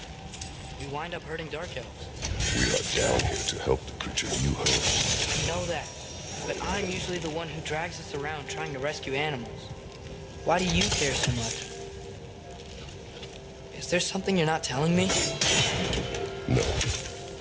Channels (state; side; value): identical; both; correlation 1.00